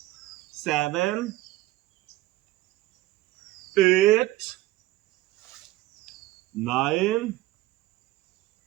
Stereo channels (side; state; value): left; quieter; 17.0 dB